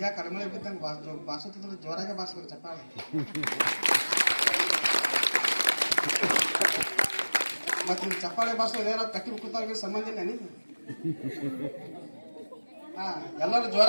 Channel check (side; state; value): both; inverted; correlation -1.00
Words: ಕಡಿಮೆ ಬಿದ್ದಂಗೆ ಬಾರಿಸುತ್ತಿದ್ರೆ ಜೋರಾಗೆ ಬಾರಿಸ್ಬೇಕು ಚಪ್ಪಾಳೆ. ಮತ್ತೆ ನೀವು ಚಪ್ಪಾಳೆ ಬಾರಿಸೋದು ಏನೋ ಕಟ್ಟಿ ಕೂತಾಗ ಸಂಬಂಧ ಇಲ್ಲ ನೀವು. ಎಲ್ಲರೂ